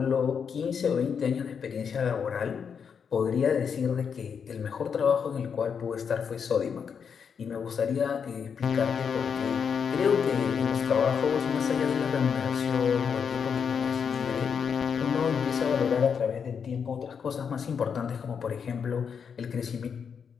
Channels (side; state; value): right; quieter; 6.7 dB